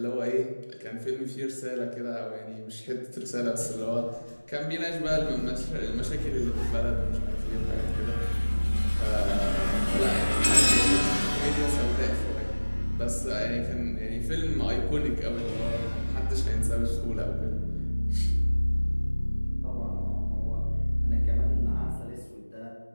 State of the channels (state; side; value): inverted; both; correlation -1.00